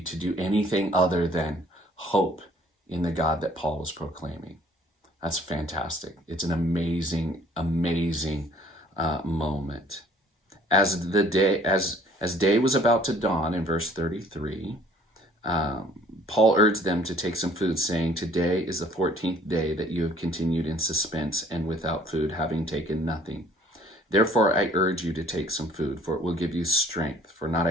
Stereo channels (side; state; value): both; normal; correlation 0.56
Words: do anything other than hope in the God that Paul was proclaiming. That's fantastic. It's an amazing, amazing moment. As day was about to dawn, in verse 33, Paul urged them to take some food, saying, "Today is the 14th day that you have continued in suspense and without food, having taken nothing. Therefore I urge you to take some food, for it will give you strength, for not